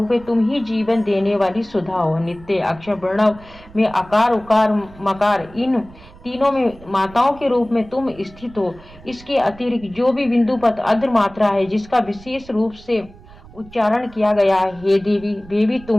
है, तुम ही जीवन देने वाली सुधा हो। नित्य अक्षर प्रणव में आकार उकार मकार इन तीनों में माताओं के रूप में तुम स्थित हो। इसके अतिरिक्त जो भी बिंदु पद अद्र मात्रा है जिसका विशेष रूप से उच्चारण किया गया है, हे देवी, वे भी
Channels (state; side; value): noise; right; rumble, 21 dB below the sound